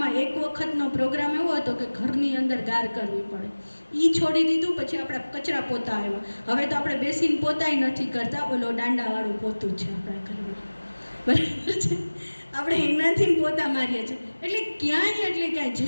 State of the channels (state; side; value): inverted; both; correlation -1.00